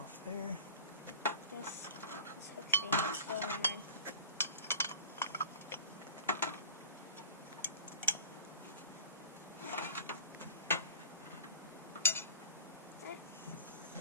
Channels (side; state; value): both; inverted; correlation -0.39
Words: there. This hook thing is going in.